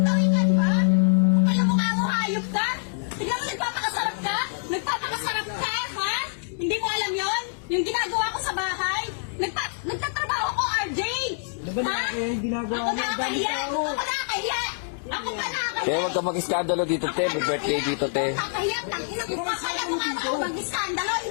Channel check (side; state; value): right; silent; digital silence